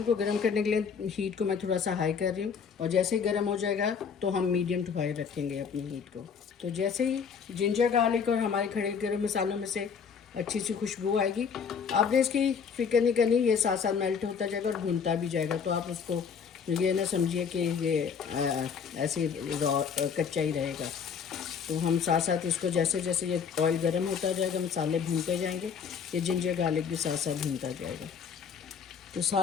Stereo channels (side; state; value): right; quieter; 6.5 dB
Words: को गर्म करने के लिए हीट को मैं थोड़ा सा हाई कर रही हूँ और जैसे ही गर्म हो जाएगा तो हम मीडियम टू हाई रखेंगे अपनी हीट को। तो जैसे ही जिंजर गार्लिक और हमारे खड़े गरम मसालों में से अच्छी सी खुशबू आएगी, आपने इसकी फिक्र नहीं करनी, ये साथ साथ मेल्ट होता जाएगा और भुनता भी जाएगा। तो आप उसको ये ना समझिए कि ये ऐसे रॉ कच्चा ही रहेगा। तो हम साथ साथ इसको जैसे जैसे ये ऑयल गर्म होता जाएगा, मसाले भूनते जाएंगे, ये जिंजर गार्लिक भी साथ साथ भूनता जाएगा। तो